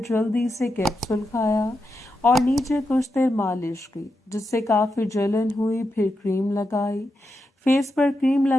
جلدی سے کیپسول کھایا اور نیچے کچھ دیر مالش کی جس سے کافی جلن ہوئی، پھر کریم لگائی، فیس پر کریم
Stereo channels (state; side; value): normal; both; correlation 0.86